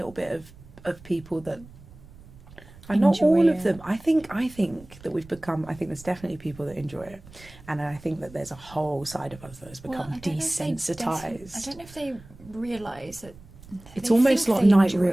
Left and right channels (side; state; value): right; noise; rumble, 21 dB below the sound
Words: bit of people that are not all Enjoy of them. it. I think that we've become. I think there's definitely people that enjoy it, and I think that there's a whole side of us that has become I don't know if they desensitized. I don't know if they realise that. It's they almost think like they night enjoy